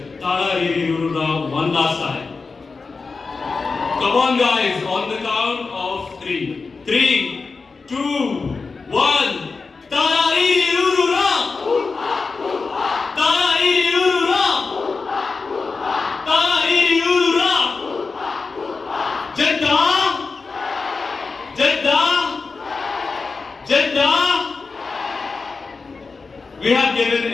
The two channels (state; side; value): quieter; right; 4.4 dB